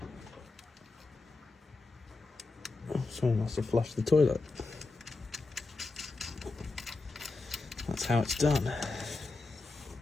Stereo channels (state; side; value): quieter; right; 3.5 dB